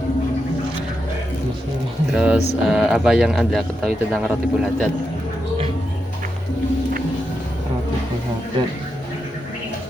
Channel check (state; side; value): normal; both; correlation 0.86